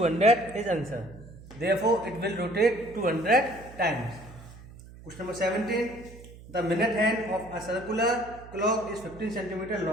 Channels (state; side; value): noise; right; hum, 18 dB below the sound